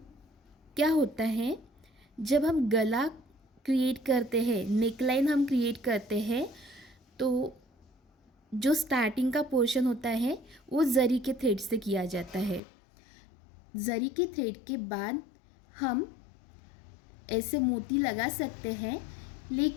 क्या होता है, जब हम गला क्रिएट करते हैं, नेकलाइन हम क्रिएट करते हैं, तो जो स्टार्टिंग का पोर्शन होता है वो जरी के थ्रेड से किया जाता है। जरी के थ्रेड के बाद हम ऐसे मोती लगा सकते हैं,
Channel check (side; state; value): right; drops out; at 12.6 s